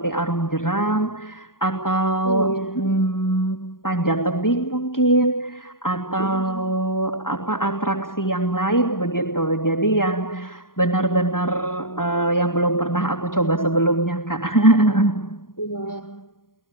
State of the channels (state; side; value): late; right; 0.91 ms